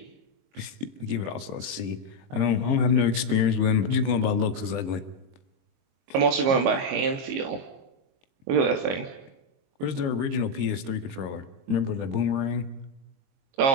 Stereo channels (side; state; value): left; late; 22 ms